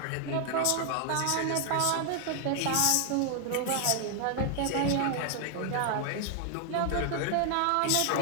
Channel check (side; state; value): both; different; correlation 0.00